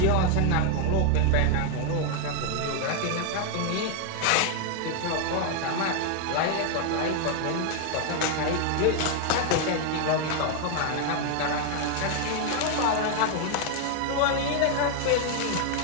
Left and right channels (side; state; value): both; different; correlation 0.00